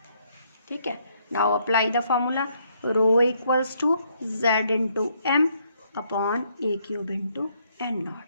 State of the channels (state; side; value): inverted; both; correlation -0.71